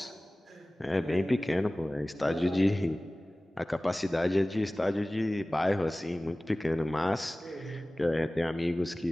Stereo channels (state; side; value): normal; both; correlation 0.98